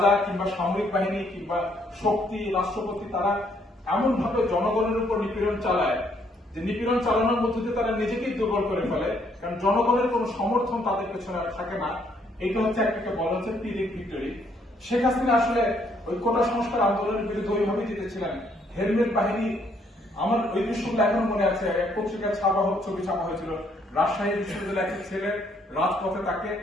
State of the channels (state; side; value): normal; both; correlation 0.69